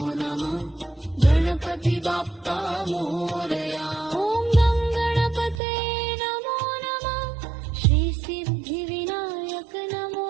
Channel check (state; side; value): drops out; left; at 5.6 s